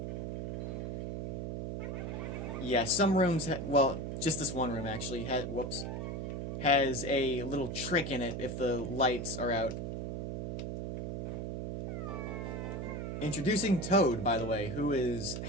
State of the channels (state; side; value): noise; right; hum, 4 dB below the sound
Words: Yeah, some rooms, just this one room actually, has a little trick in it if the lights are out. Introducing Toad, by the way, who is